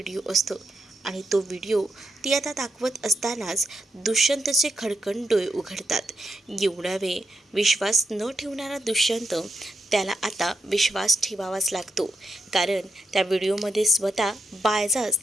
असतो आणि तो व्हिडिओ ती आता दाखवत असतानाच दुष्यंतचे खडकन डोळे उघडतात. एवढा वेळ विश्वास न ठेवणारा दुष्यंत, त्याला आता विश्वास ठेवावाच लागतो, कारण त्या व्हिडिओमध्ये स्वतः बाळजा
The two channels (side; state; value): both; normal; correlation 0.83